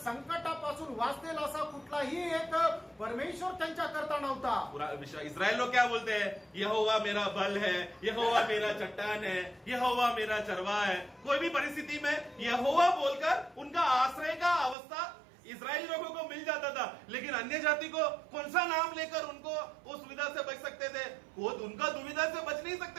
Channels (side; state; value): left; drops out; at 14.8 s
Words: वाचतील असा कुठलाही एक परमेश्वर त्यांच्या करता नव्हता। पूरा इस्राएल लोग क्या बोलते हैं? यहोवा मेरा बल है, यहोवा मेरा चट्टान है, यहोवा मेरा चरवाहा है। कोई भी परिस्थिति में यहोवा बोलकर उनका आश्रय का अवस्था इस्राएली लोगों को मिल जाता था। लेकिन अन्य जाति को कौन सा नाम लेकर उनको उस सुविधा से बच सकते थे? वो उनका दुविधा से बच नहीं